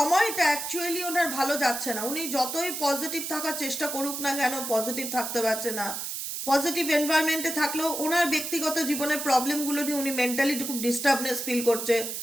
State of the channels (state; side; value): noise; right; hiss, 5 dB below the sound